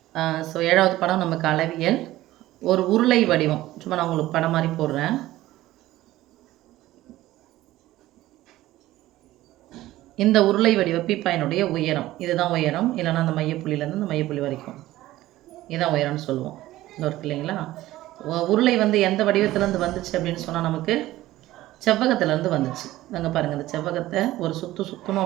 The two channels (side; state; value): left; quieter; 15.9 dB